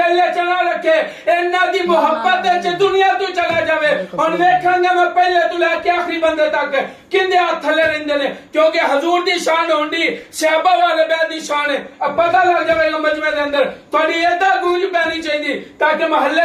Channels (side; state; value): both; identical; correlation 1.00